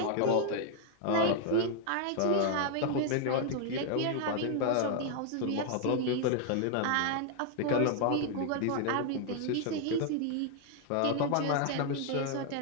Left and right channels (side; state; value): both; different; correlation 0.00